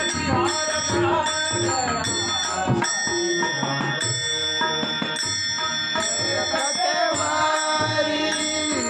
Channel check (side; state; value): both; identical; correlation 1.00